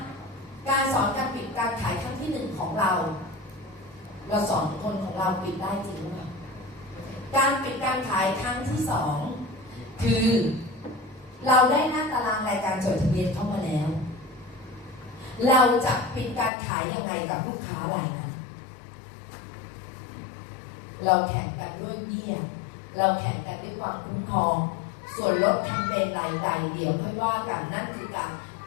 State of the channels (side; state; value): right; drops out; at 16.5 s